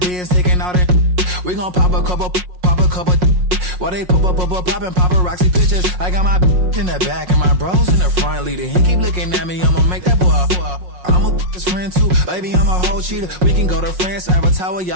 beans taking out it. We gon' pop a couple. While they poppin' paparazzi pictures. I got my in the back and my bros in the front leading. He keep looking at me, I'ma make that boy. I'm a his friend too, baby. I'm a whole cheater. We can go to France, Avatar,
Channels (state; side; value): late; left; 5.5 ms